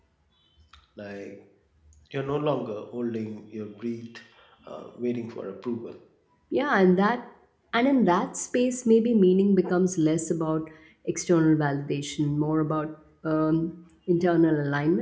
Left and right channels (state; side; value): identical; both; correlation 1.00